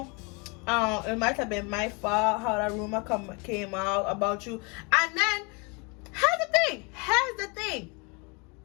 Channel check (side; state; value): right; quieter; 31.1 dB